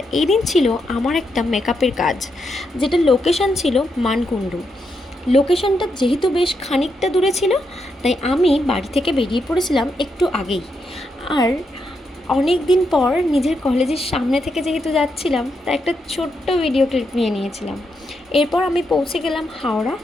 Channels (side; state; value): both; normal; correlation 0.82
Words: এই দিন ছিল আমার একটা মেকআপের কাজ, যেটা লোকেশন ছিল মানকুণ্ডু। লোকেশনটা যেহেতু বেশ খানিকটা দূরে ছিল, তাই আমি বাড়ি থেকে বেরিয়ে পড়েছিলাম একটু আগেই। আর অনেক দিন পর নিজের কলেজের সামনে থেকে যেহেতু যাচ্ছিলাম, তাই একটা ছোট্ট ভিডিও ক্লিপ নিয়ে নিয়েছিলাম। এরপর আমি পৌঁছে গেলাম হাওড়া।